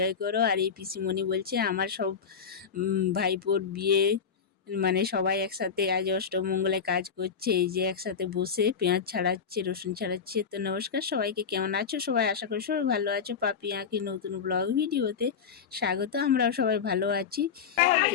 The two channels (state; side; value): quieter; right; 6.5 dB